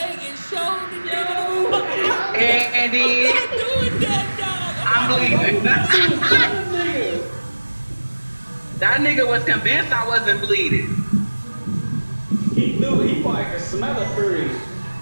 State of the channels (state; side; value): inverted; both; correlation -1.00